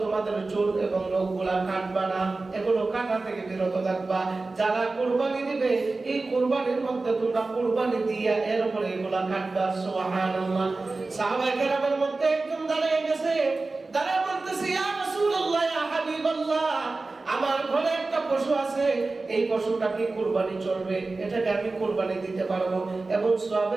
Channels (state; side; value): quieter; left; 3.5 dB